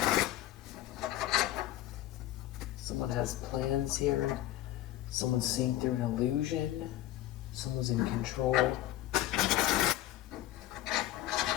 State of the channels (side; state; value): right; quieter; 14.3 dB